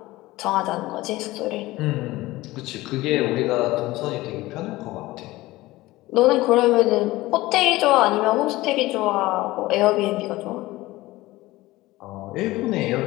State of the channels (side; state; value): right; quieter; 18.6 dB